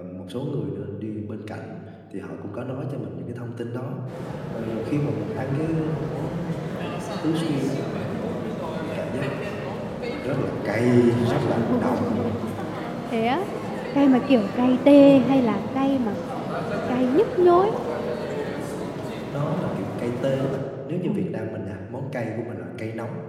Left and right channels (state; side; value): identical; both; correlation 1.00